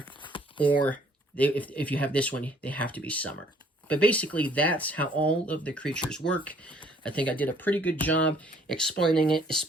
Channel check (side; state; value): both; normal; correlation 0.60